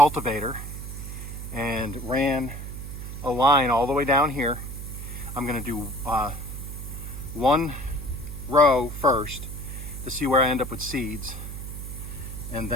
and ran a line all the way down here. I'm gonna do one row first to see where I end up with seeds. And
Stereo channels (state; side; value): noise; right; hum, 8 dB below the sound